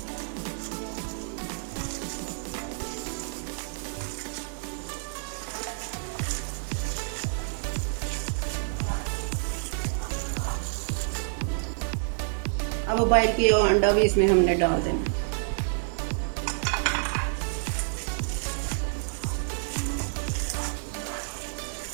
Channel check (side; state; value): left; silent; digital silence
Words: अब बॉयल किया हुआ अंडा भी इसमें हमने डाल देना।